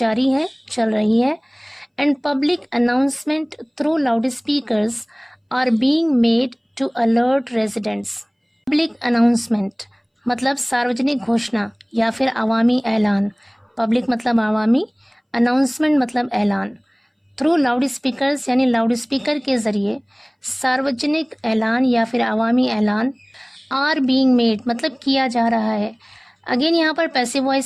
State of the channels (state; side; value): identical; both; correlation 1.00